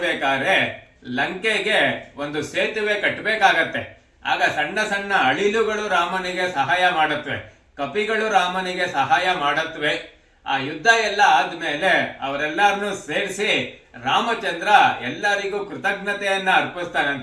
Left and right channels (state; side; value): identical; both; correlation 1.00